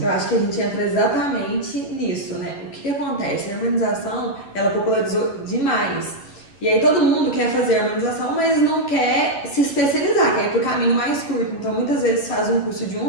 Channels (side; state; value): right; late; 11 ms